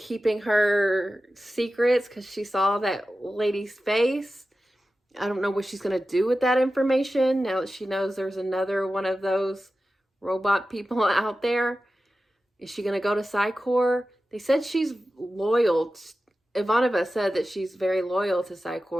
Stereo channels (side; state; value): both; normal; correlation 0.94